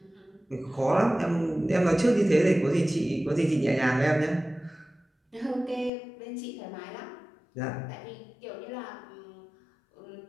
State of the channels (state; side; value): drops out; right; at 5.9 s